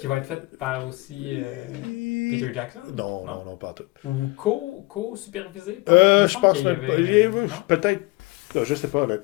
va être faite par aussi Peter Jackson? Non, pas tout. Ou co-supervisé par... Je pense qu'il y avait... Peut-être... Je sais pas,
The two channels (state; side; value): quieter; right; 24.1 dB